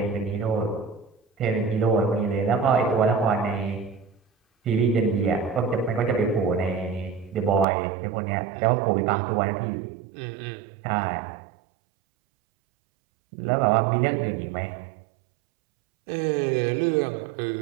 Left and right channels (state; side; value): drops out; left; at 7.7 s